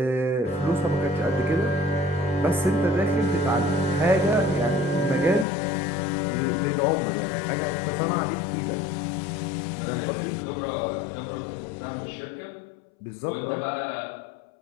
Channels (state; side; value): drops out; right; at 5.5 s